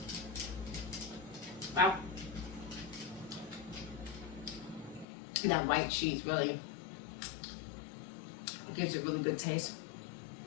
Wow. That white cheese really gives it really good taste.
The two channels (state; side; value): drops out; right; at 5.1 s